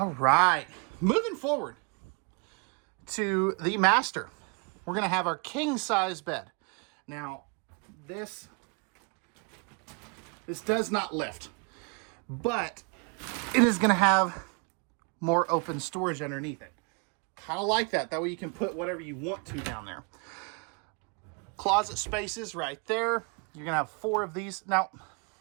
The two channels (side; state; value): left; quieter; 34.5 dB